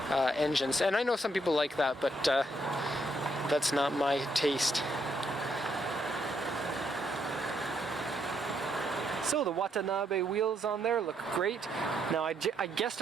engines, and I know some people like that, but that's not my taste. So the Watanabe wheels on there look great. Now I guessed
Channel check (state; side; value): normal; both; correlation 0.74